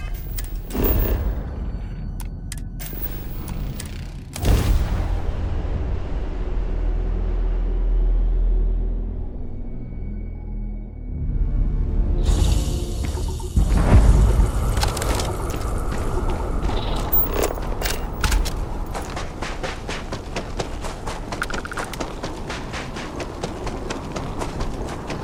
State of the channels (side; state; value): both; identical; correlation 1.00